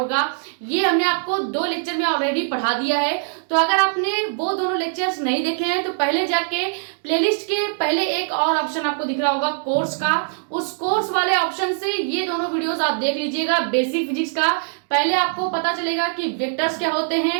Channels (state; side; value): silent; left; digital silence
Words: ये हमने आपको 2 लेक्चर में ऑलरेडी पढ़ा दिया है। तो अगर आपने वो दोनों लेक्चर्स नहीं देखे हैं तो पहले जाके प्लेलिस्ट के पहले एक और ऑप्शन आपको दिख रहा होगा कोर्स का, उस कोर्स वाले ऑप्शन से ये दोनों वीडियोस आप देख लीजिएगा बेसिक फिजिक्स का। पहले आपको पता चलेगा कि वेक्टर्स क्या होते